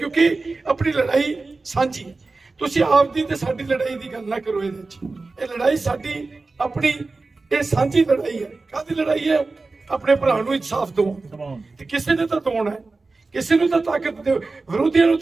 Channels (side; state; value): left; quieter; 3.7 dB